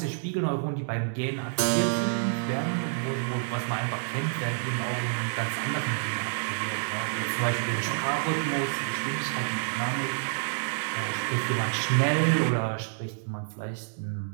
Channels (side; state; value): left; silent; 59 dB below the other